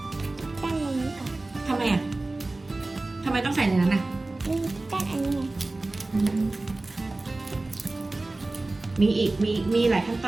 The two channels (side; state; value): left; quieter; 3.0 dB